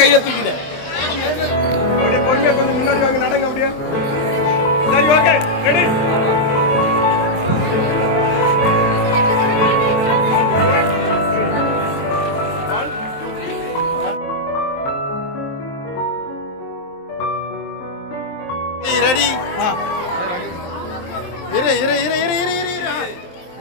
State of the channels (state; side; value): late; right; 23 ms